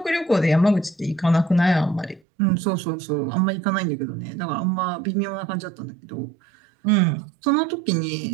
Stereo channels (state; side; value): drops out; left; at 2.2 s